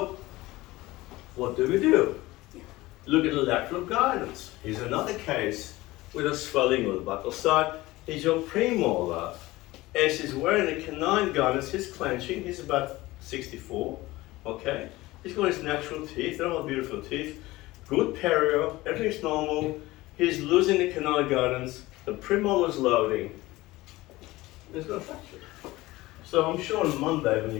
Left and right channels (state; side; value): quieter; right; 19.1 dB